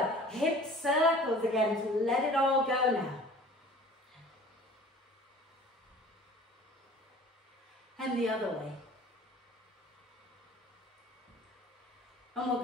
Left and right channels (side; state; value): both; normal; correlation 0.46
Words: hip circles again to let it all go now. And the other way. And we're